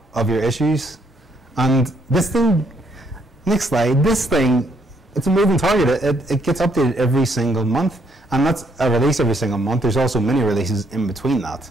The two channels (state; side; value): normal; both; correlation 0.71